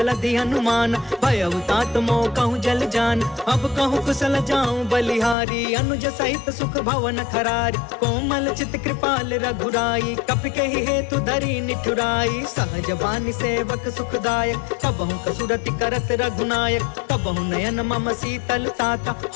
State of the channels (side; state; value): right; drops out; at 5.4 s